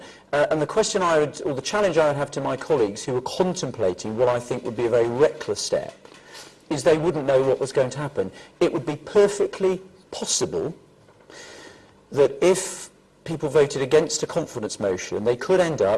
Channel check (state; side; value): identical; both; correlation 1.00